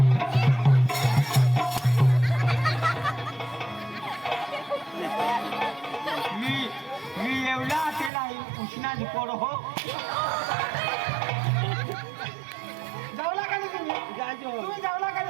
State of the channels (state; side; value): drops out; left; at 8.1 s